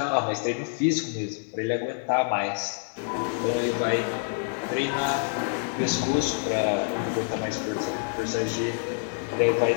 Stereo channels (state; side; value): silent; right; 60 dB below the other